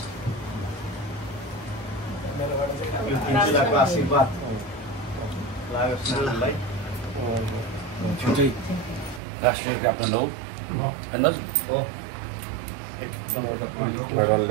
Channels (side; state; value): left; drops out; at 9.2 s